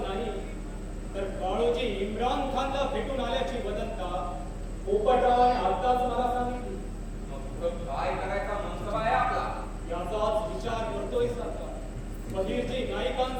नाही तर काळोजी इम्रान खानला भेटून आल्याची वदंता पोपटरावाने आताच मला सांगितली. मग पुढं काय करायचा मनसबा आहे आपला? याचाच विचार करतोय सरकार. बहिर्जी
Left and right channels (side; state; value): both; identical; correlation 1.00